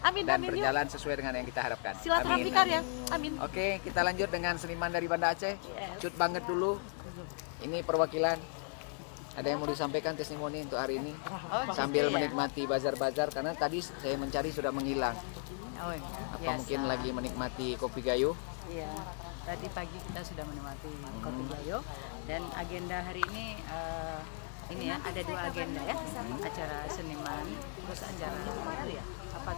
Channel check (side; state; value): right; silent; 54 dB below the other